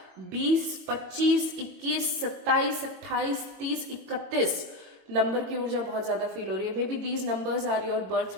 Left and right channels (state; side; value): late; left; 22 ms